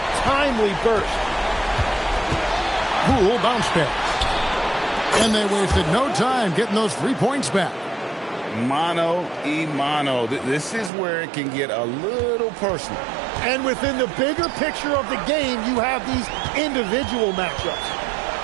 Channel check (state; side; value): drops out; left; at 10.9 s